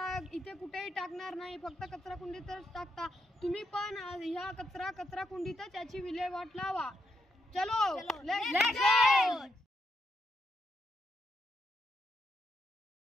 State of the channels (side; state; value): both; normal; correlation 0.80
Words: इथे कुठेही टाकणार नाही, फक्त कचरा कुंडीतच टाकता. तुम्ही पण ह्या कचरा कुंडीतच याची विल्हेवाट लावा. चलो लेट्स गो.